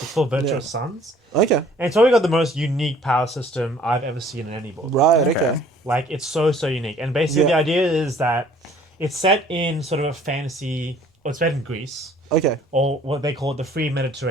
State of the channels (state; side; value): normal; both; correlation 0.56